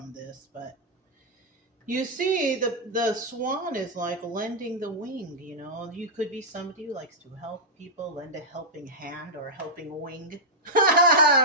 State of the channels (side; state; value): both; normal; correlation -0.08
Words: this, but you see the swan is like lending the wing. You could be somebody who likes to help people, lend a helping hand or a helping wing.